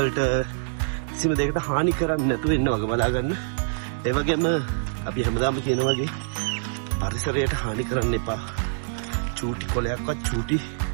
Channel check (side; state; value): left; silent; digital silence